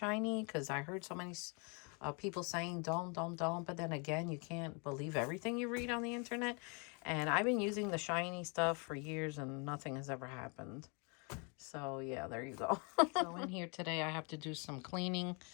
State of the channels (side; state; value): right; quieter; 34.1 dB